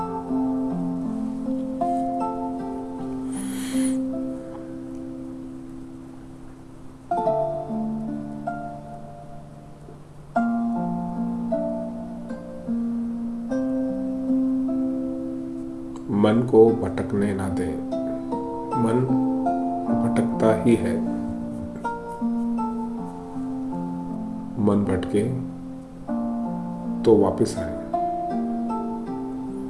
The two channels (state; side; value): identical; both; correlation 1.00